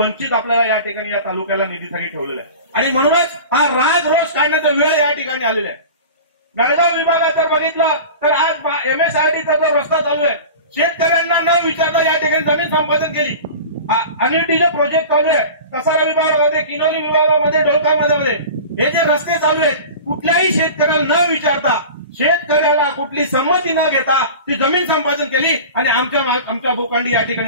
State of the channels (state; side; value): inverted; both; correlation -0.36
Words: आपल्याला या ठिकाणी या तालुक्याला निधीसाठी ठेवलेला आहे. आणि म्हणूनच हा राग रोष काढण्याचा वेळ या ठिकाणी आलेला आहे. बेळगाव विभागात जर बघितलं तर आज एमएसआरडीचा जो रस्ता चालू आहे, शेतकऱ्यांना न विचारता या ठिकाणी जमीन संपादन केली. अनिटीचे प्रोजेक्ट चालू आहे कसारा विभागामध्ये, किनोली विभागामध्ये, डोलकामध्ये हे जे रस्ते चालू आहेत कुठल्याही शेतकऱ्याला न विचारता, शेतकऱ्याला कुठली संमती न घेता ती जमीन संपादन केली आणि आमच्या भूखंडी या